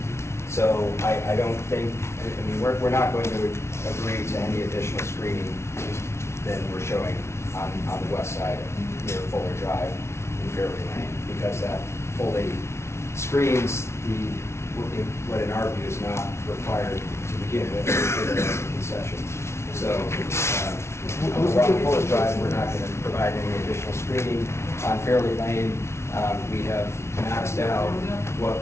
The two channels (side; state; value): right; late; 0.13 ms